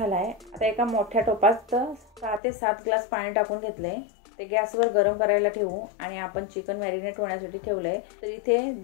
आता एका मोठ्या टोपात 6 ते 7 ग्लास पाणी टाकून घेतलंय. ते गॅसवर गरम करायला ठेवू. आणि आपण चिकन मॅरिनेट होण्यासाठी ठेवलंय. तर इथे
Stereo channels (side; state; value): right; drops out; at 2.4 s